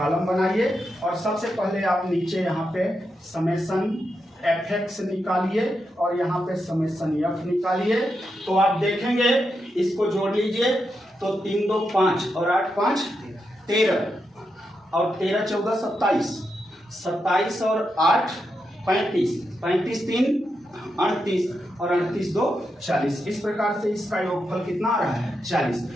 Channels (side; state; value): both; normal; correlation 0.85